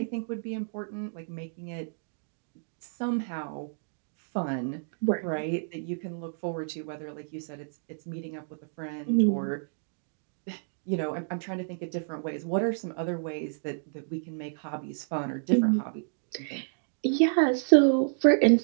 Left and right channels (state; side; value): silent; left; digital silence